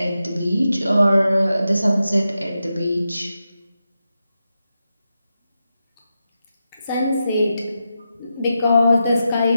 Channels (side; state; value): both; inverted; correlation -0.89